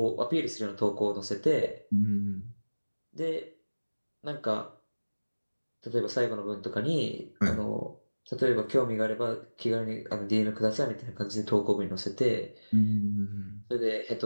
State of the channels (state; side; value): inverted; both; correlation -1.00